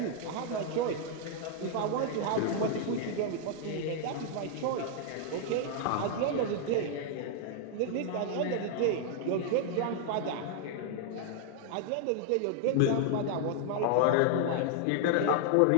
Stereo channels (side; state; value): both; different; correlation 0.00